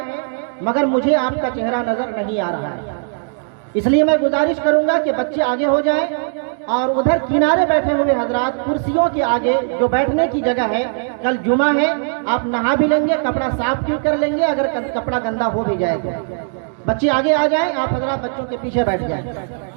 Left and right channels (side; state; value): left; silent; digital silence